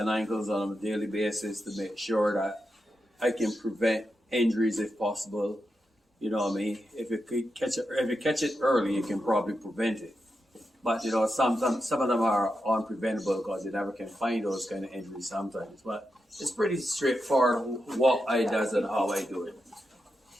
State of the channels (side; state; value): both; normal; correlation 0.87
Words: ankles on a daily basis to make sure that I can prevent injuries if possible. You know what I mean? If you catch it early, you can probably prevent it. But you know, some of them are unpreventable because you never can find those kind of injuries sometimes. But it's pretty straightforward what I does and how I do it.